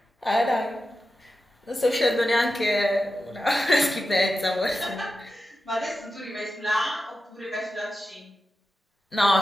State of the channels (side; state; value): both; normal; correlation 0.91